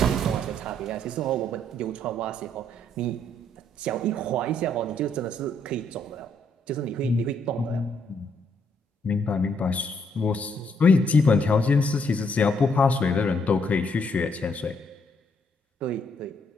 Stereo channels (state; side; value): normal; both; correlation 0.71